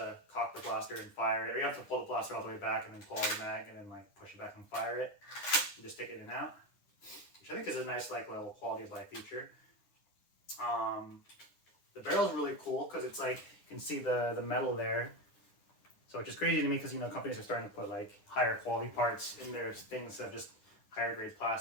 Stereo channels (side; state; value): right; late; 9.9 ms